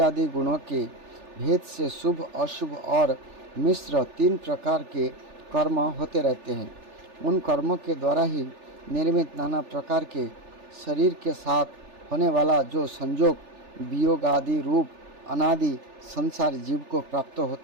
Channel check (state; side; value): late; left; 3.4 ms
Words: आदि गुणों के भेद से शुभ अशुभ और मिश्र 3 प्रकार के कर्म होते रहते हैं। उन कर्मों के द्वारा ही निर्मित नाना प्रकार के शरीर के साथ होने वाला जो संयोग वियोग आदि रूप अनादि संसार जीव को प्राप्त